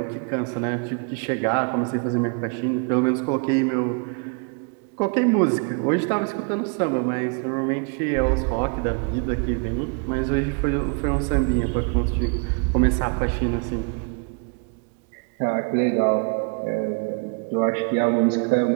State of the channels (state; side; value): quieter; left; 37.3 dB